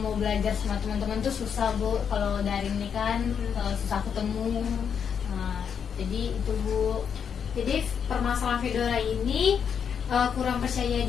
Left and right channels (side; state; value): right; quieter; 7.4 dB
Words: belajar sama teman-teman tuh susah, Bu. Kalau daring nih kan susah ketemu. Jadi itu, Bu. Jadi permasalahan Fedora ini kurang percaya